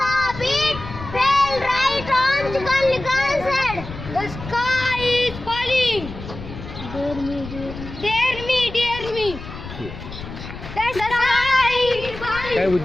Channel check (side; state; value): left; noise; rumble, 12 dB below the sound